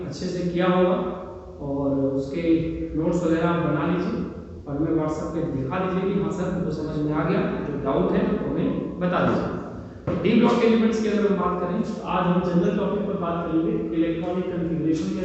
अच्छे से किया होगा और उसके नोट्स वगैरह आप बना लीजिए और हमें व्हाट्सएप पे दिखा दीजिए कि हाँ सर हमको समझ में आ गया। जो डाउट है तो हमें बता दीजिए। डी ब्लॉक एलिमेंट्स की अगर हम बात करें तो आज हम जनरल टॉपिक पर बात करेंगे। इलेक्ट्रॉनिक कॉन्फ़िगरेशन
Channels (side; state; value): both; identical; correlation 1.00